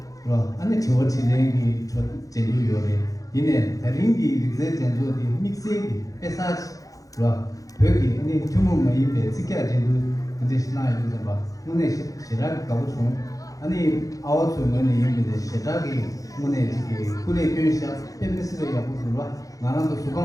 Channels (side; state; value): right; late; 0.17 ms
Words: 是吧？俺那听我听人的说真都有的，因为他人的这真做的 mix 的，别啥子，是吧？对的，你全部没一辈子干真都，这是哪一个吧？我那是那个搞不出。아니 아웃 소문에 이미데 시작이 문에 지기 군의 교사 팬미스를 야부들와 나랑도